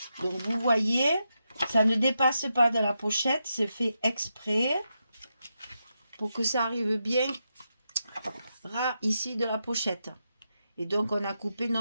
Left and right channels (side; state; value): both; inverted; correlation -0.86